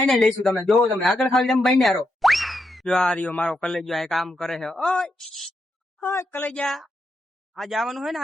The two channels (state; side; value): normal; both; correlation 0.83